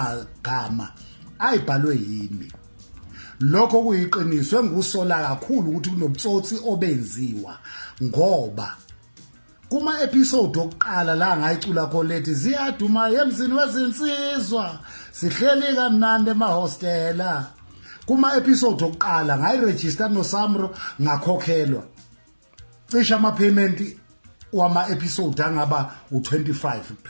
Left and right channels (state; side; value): inverted; both; correlation -1.00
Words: ayibhalwe yimi. Lokho kuyiqiniso engusola kakhulu ukuthi kunobutsotsi obenziwa ngoba kuma episode okuqala la ngayicula kholethi ziyaduma emzini wezinsizwa sihleli kamnandi emahostela. Kuma episode okuqala ngayiregister noSamro ngakhokhelwa cisha ama payment wama episode angaba u25